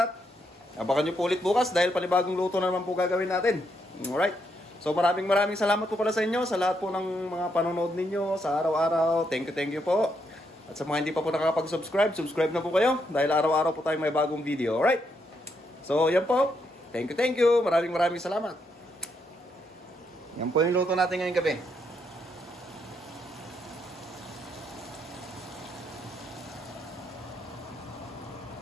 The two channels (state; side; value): normal; both; correlation 0.78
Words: Abangan nyo po ulit bukas dahil panibagong luto na naman po gagawin natin. Alright. So maraming salamat po pala sa inyo, sa lahat po ng mga panonood ninyo sa araw-araw. Thank you po. At sa mga hindi pa po nakakapag-subscribe, subscribe na po kayo dahil araw-araw po tayong may bagong video. Alright. So yan po. Thank you. Maraming salamat. Yan po yung luto natin ngayong gabi.